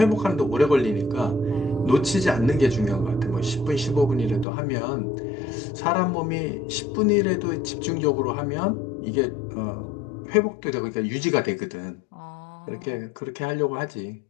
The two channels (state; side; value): drops out; right; at 4.5 s